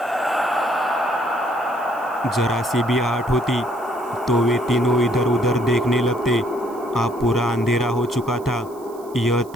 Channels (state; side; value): noise; right; hiss, 25 dB below the sound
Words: जरा सी भी आहट होती तो वे तीनों इधर उधर देखने लगते। अब पूरा अंधेरा हो चुका था। यह